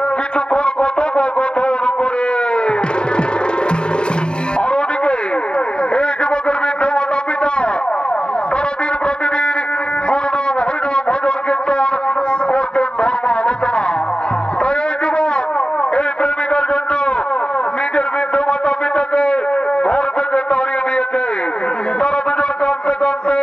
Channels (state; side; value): late; right; 0.050 ms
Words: কিছুক্ষণ কথোপকথন করে। আর ওদিকে এই যুবকের বৃদ্ধ মাতা পিতা তারা দিন প্রতিদিন গুরুনাম হরিনাম ভজন কীর্তন করতেন, ধর্ম আলোচনা। তাই এই যুবক এই প্রেমিকার জন্য নিজের বৃদ্ধ মাতা পিতাকে ঘর থেকে তাড়িয়ে দিয়েছে। তারা দুজন কাঁদতে কাঁদতে